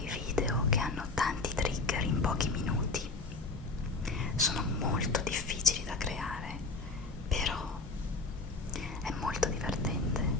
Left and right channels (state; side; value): quieter; right; 3.6 dB